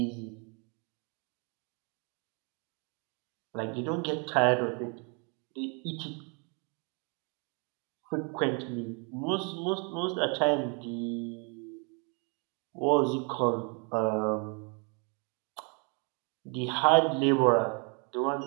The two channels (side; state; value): left; quieter; 35.6 dB